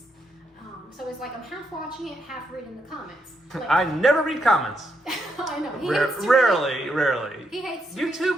So it's like I'm half watching it, half reading the comments. Like, I never read comments. I know. Rarely. He hates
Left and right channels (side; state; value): both; normal; correlation 0.79